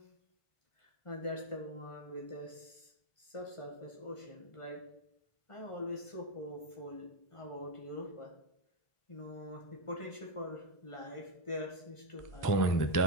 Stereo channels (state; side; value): late; right; 1.5 ms